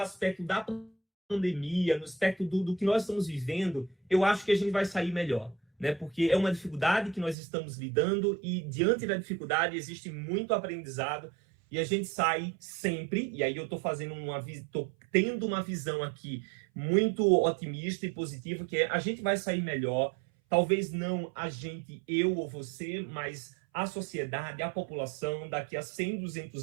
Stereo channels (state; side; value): drops out; left; at 7.4 s